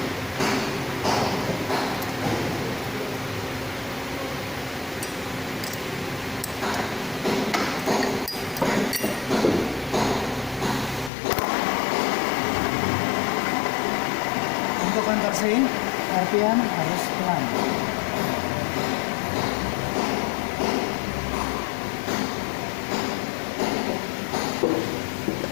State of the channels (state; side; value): drops out; right; at 11.1 s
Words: Untuk countersink RPM harus pelan.